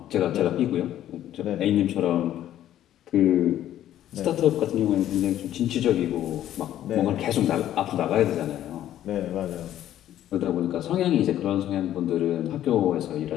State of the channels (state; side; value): quieter; right; 12.1 dB